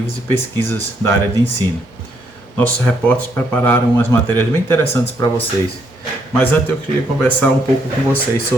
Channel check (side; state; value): both; normal; correlation 0.73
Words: e pesquisas da área de ensino. Nossos repórteres prepararam umas matérias bem interessantes para vocês. Mas antes eu queria conversar um pouco com vocês